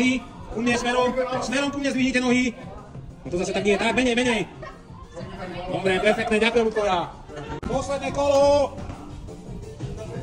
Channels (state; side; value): identical; both; correlation 1.00